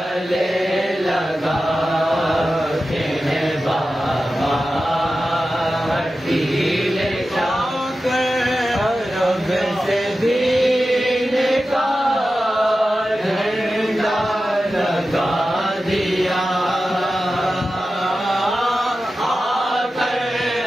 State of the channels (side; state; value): both; normal; correlation 0.93